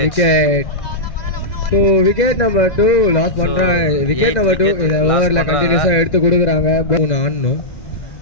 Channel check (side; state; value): right; late; 2.0 ms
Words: So wicket number 2 loss பண்றாங்க. விக்கெட் நம்பர் 2 இந்த ஓவர்ல கண்டினியூஸா எடுத்து கொடுக்குறாங்க. பவுன் ஆடணும்.